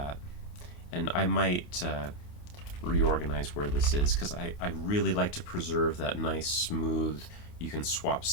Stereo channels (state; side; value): late; right; 28 ms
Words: And I might reorganize where this is, because I really like to preserve that nice smooth, you can swap